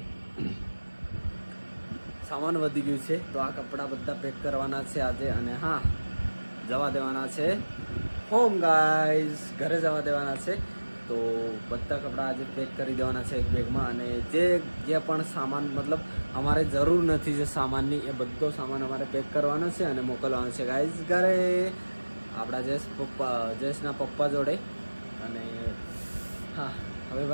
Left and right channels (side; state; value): both; inverted; correlation -1.00